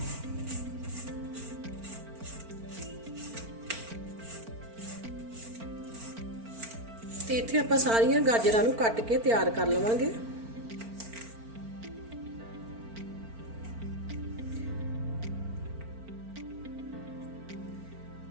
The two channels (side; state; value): left; late; 4.4 ms